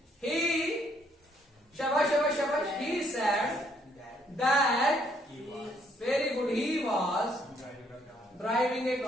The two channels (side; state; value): both; normal; correlation 0.68